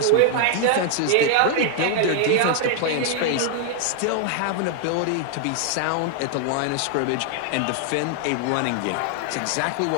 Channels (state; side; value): different; both; correlation 0.00